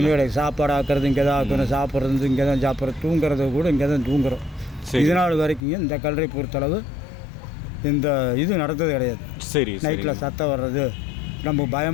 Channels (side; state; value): right; drops out; at 5.6 s